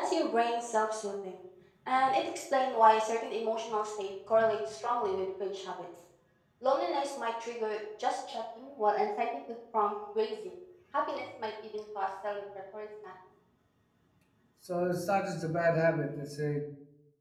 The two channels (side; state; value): both; identical; correlation 1.00